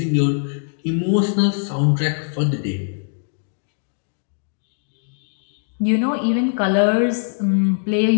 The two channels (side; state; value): right; silent; digital silence